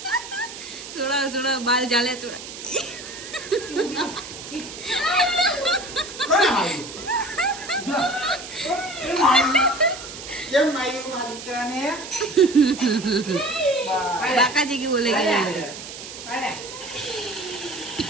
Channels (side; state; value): right; noise; hiss, 12 dB below the sound